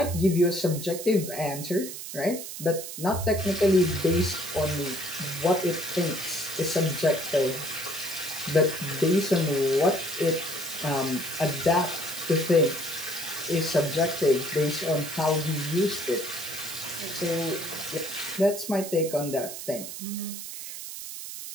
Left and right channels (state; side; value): noise; right; hiss, 9 dB below the sound